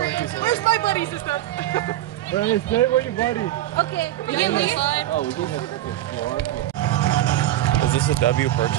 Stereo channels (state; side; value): quieter; left; 14.0 dB